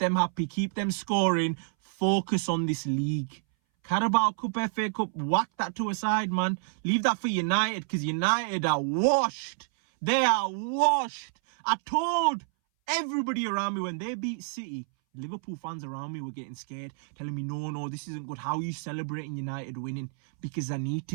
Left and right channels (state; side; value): silent; left; 59 dB below the other